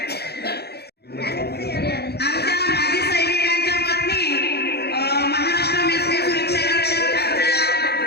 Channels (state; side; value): late; right; 0.47 ms